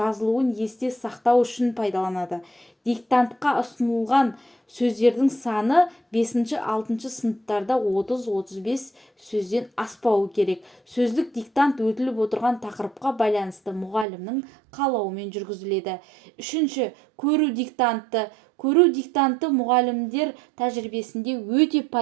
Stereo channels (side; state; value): left; drops out; at 14.1 s